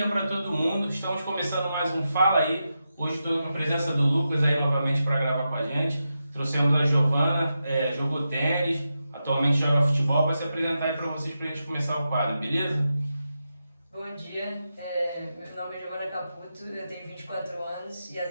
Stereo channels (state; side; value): inverted; both; correlation -0.88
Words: para todo mundo. Estamos começando mais um Fala Aí. Hoje estou na presença do Lucas aí novamente para gravar com a gente. Trouxemos a Giovana, jogou tênis, atualmente joga futebol, vai se apresentar aí para vocês para a gente começar o quadro, beleza? Bom dia, meu nome é Giovana Caputo, eu tenho 24 anos e